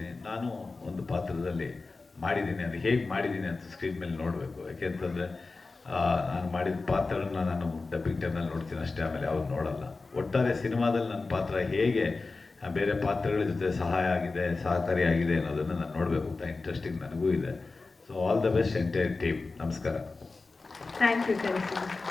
ನಾನು ಒಂದು ಪಾತ್ರದಲ್ಲಿ ಮಾಡಿದ್ದೀನಿ, ಅದು ಹೇಗೆ ಮಾಡಿದ್ದೀನಿ ಅಂತ ಸ್ಕ್ರೀನ್ ಮೇಲೆ ನೋಡಬೇಕು. ಯಾಕೆಂತಂದರೆ ನಾನು ಮಾಡಿದ ಪಾತ್ರನ ನಾನು ಡಬ್ಬಿಂಗ್ ಟೈಮ್ನಲ್ಲಿ ನೋಡ್ತೀನಿ ಅಷ್ಟೇ, ಆಮೇಲೆ ಅವ್ರು ನೋಡಲ್ಲ. ಒಟ್ಟಾರೆ ಸಿನಿಮಾದಲ್ಲಿ ನನ್ನ ಪಾತ್ರ ಹೇಗೆ ಬೇರೆ ಪಾತ್ರಗಳ ಜೊತೆ ಸಹಕಾರಿಯಾಗಿದೆ ಅನ್ನೋದನ್ನು ನಾನು ನೋಡಬೇಕು ಅಂತ ಇಂಟ್ರೆಸ್ಟಿಂಗ್ ನನಗೂ ಇದೆ. So all the best entire team. ನಮಸ್ಕಾರ. Thank you.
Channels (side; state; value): right; quieter; 3.8 dB